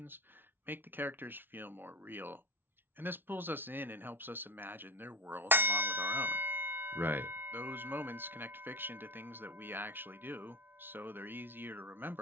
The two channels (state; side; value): late; left; 0.10 ms